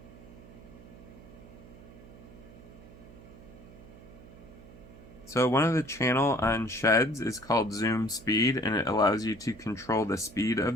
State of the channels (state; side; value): noise; right; hum, 19 dB below the sound